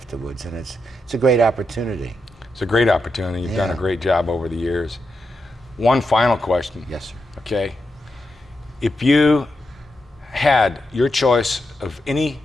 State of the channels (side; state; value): both; normal; correlation 0.86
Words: and it's a great opportunity. It's a great opportunity. You've done a great job over the years. One final question. Yes, sir. Okay. If you had your choice of any